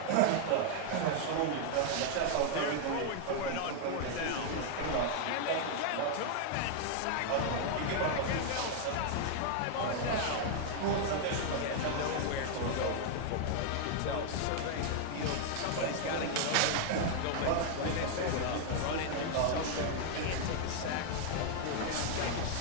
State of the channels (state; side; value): different; both; correlation 0.00